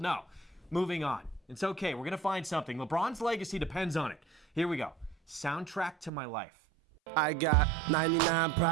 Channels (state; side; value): drops out; left; at 6.1 s